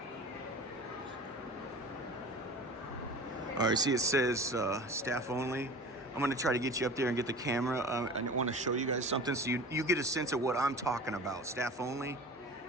all right, see it says staff only. I'm gonna try to get you up there and get the camera. I want to show you guys something so you get a sense of what I'm talking about. Staff only.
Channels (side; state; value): both; normal; correlation 0.38